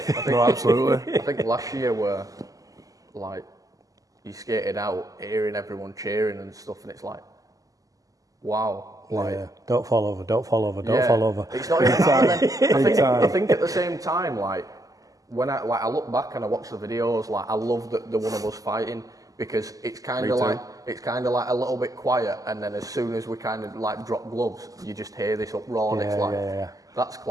what I mean? Absolutely. I think last year were like you skated out, hearing everyone cheering and stuff, and it's like, wow, like Don't fall over, don't fall over, don't yeah, fall over. It's not even that. And then I think at the same time, like when I look back and I watch the videos, like I love the one of us fighting because it's kind of like a little bit quiet, and then as soon as we kind of like drop gloves, you just hear this uproar, and it's like that's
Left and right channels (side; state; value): left; late; 0.17 ms